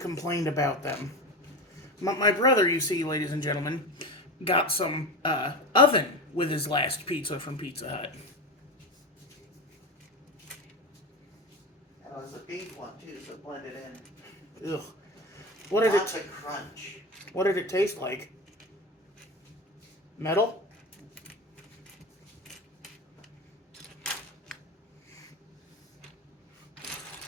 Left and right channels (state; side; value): normal; both; correlation 0.23